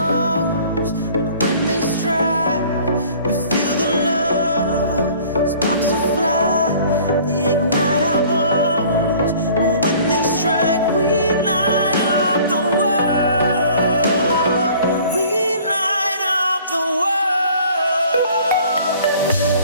and when they strike, we feel the love. Sparks will fly, they ignite our bones. And when they strike, we light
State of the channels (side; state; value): both; inverted; correlation -0.51